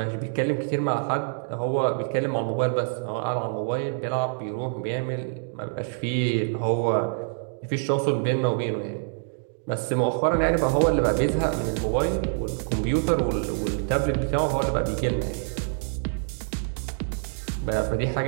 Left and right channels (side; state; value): left; silent; digital silence